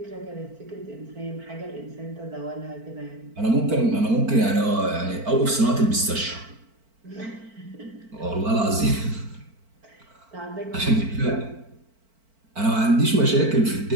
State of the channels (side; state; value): left; late; 4.5 ms